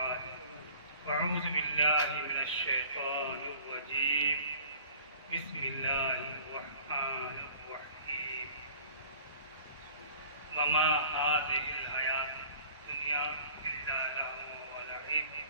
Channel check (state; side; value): inverted; both; correlation -0.48